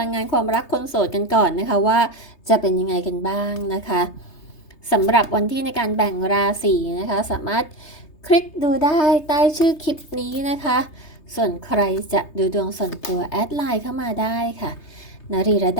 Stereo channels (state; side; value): late; right; 3.3 ms